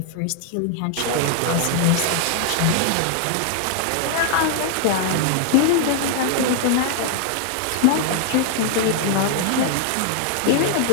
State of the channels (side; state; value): both; different; correlation -0.01